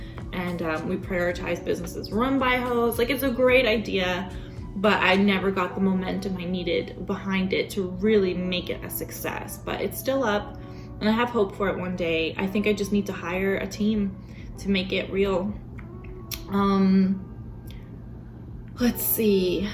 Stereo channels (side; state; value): both; identical; correlation 1.00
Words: and we prioritize businesses run by Heaux. Like, it's a great idea, but I never got the momentum I needed behind it to really make it a success. But it's still up, and I have hope for it one day. I think I just need to hire a team to make it real. Let's see.